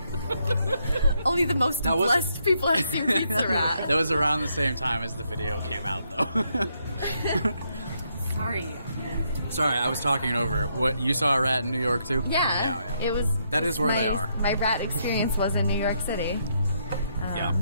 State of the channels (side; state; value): both; inverted; correlation -0.76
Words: Only the most That was- blessed people have seen pizza rat. That was around the same time as the video came out, though. Sorry. Sorry, I was talking over it. What, you saw a rat in New York too? Yeah. It was. That is where they are. My rat experience was in New York City. Yeah.